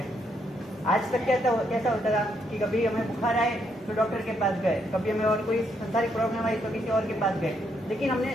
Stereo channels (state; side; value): normal; both; correlation 0.75